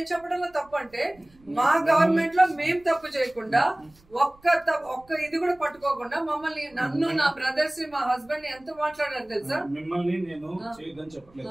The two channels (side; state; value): right; noise; rumble, 29 dB below the sound